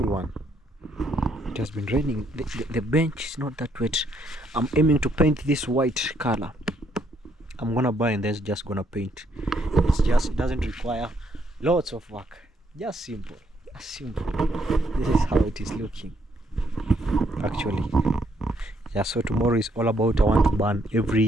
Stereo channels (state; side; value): normal; both; correlation 0.72